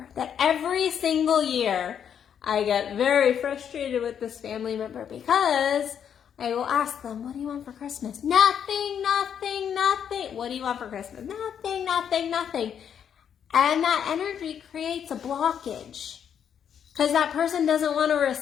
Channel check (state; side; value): quieter; right; 8.4 dB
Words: that every single year I get very frustrated with this family member, because I will ask them, what do you want for Christmas? Nothing. What do you want for Christmas? Nothing. And that energy creates a blockage, because that person doesn't want to